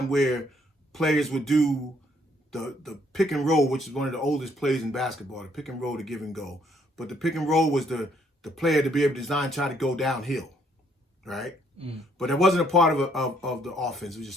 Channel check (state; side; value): normal; both; correlation 0.67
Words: where players would do the pick and roll, which is one of the oldest plays in basketball. The pick and roll, the give and go, but the pick and roll was the player to be able to try to go downhill, right? But it wasn't a part of the offense. It was